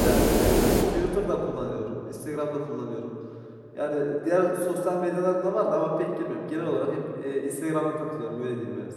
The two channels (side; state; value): both; identical; correlation 1.00